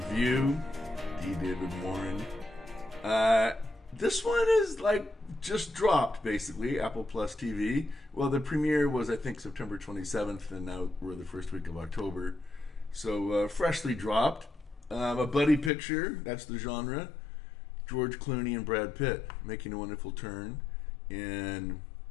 D. David Morin. This one is like just dropped, basically, Apple Plus TV. Well, the premiere was, I think, September 27th, and now we're the first week of October. So, freshly dropped. A buddy picture, that's the genre. George Clooney and Brad Pitt making a wonderful turn in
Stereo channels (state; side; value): drops out; right; at 15.7 s